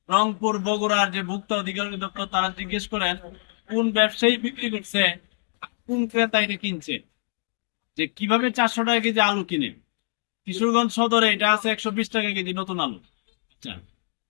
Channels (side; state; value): right; silent; digital silence